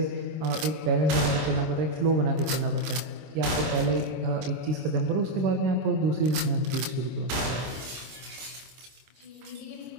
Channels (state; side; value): late; left; 26 ms